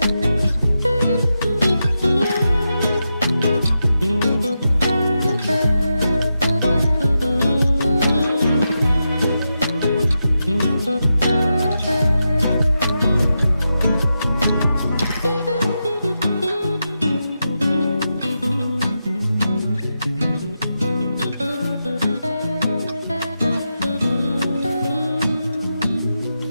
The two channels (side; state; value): both; inverted; correlation -0.88